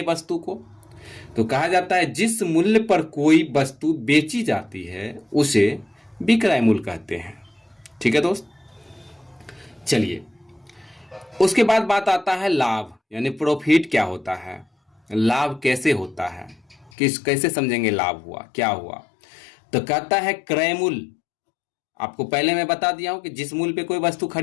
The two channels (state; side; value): drops out; right; at 16.9 s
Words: वस्तु को। तो कहा जाता है जिस मूल्य पर कोई वस्तु बेची जाती है उसे विक्रय मूल्य कहते हैं। ठीक है दोस्त, चलिए उसके बाद बात आता है लाभ, यानी प्रॉफिट क्या होता है, लाभ कैसे होता है, कैसे समझेंगे लाभ हुआ क्या हुआ। तो कहता है क्रय मूल्य, आपको पहले मैं बता दिया हूं कि जिस मूल्य पे कोई वस्तु